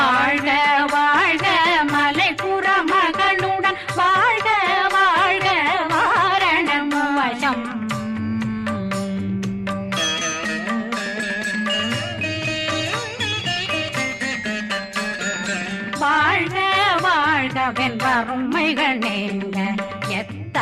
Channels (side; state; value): both; identical; correlation 1.00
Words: வாழ்க மலை புற மகளுடன் வாழ்க வாழ்க வாரணம் வசம் வாழ்க வாழ்க வென்றருமைகள் நீங்க